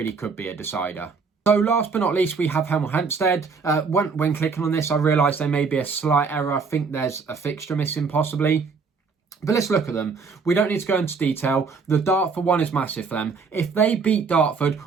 could be a decider. So last but not least, we have Hemel Hempstead. When clicking on this, I realised there may be a slight error. I think there's a fixture missing possibly. But let's look at them. We don't need to go into detail. The Dartford one is massive for them. If they beat Dartford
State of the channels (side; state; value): left; quieter; 5.0 dB